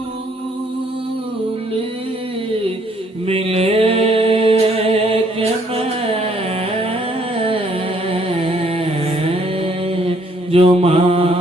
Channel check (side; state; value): both; normal; correlation 0.66